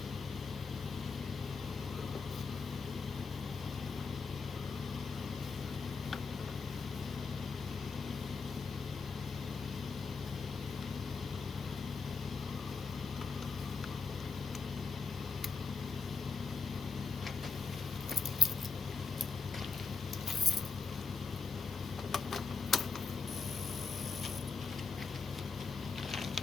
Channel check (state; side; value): quieter; right; 5.0 dB